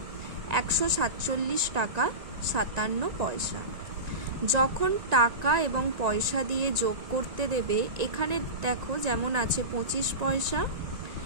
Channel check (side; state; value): left; late; 1.9 ms